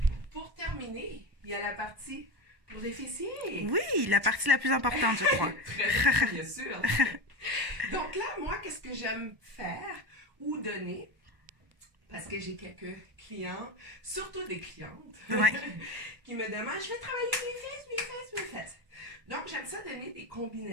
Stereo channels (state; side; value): late; left; 1.1 ms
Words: pour terminer, il y a la partie pour les fessiers. Oui, la partie la plus importante, je crois. Très bien sûr. Donc là, moi, qu'est-ce que j'aime faire ou donner? Parce que j'ai quelques clients, surtout des clientes, Ouais. qui me demandent, je vais travailler mes fesses. Donc, j'aime ça donner des